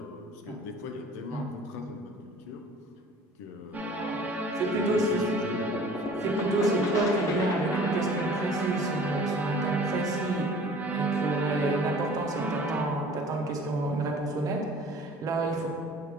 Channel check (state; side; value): normal; both; correlation 0.48